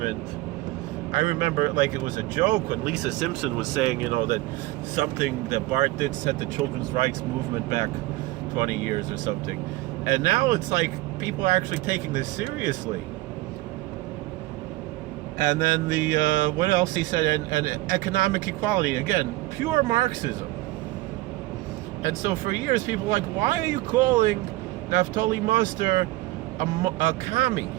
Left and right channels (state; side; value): quieter; left; 19.1 dB